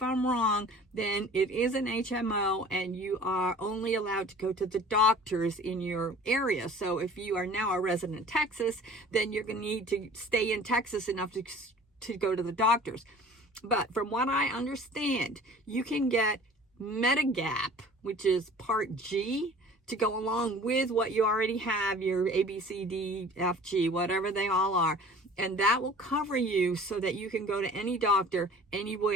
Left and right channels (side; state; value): both; normal; correlation 0.46